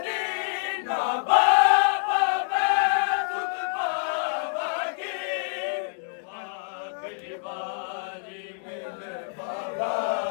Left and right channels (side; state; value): right; silent; 60 dB below the other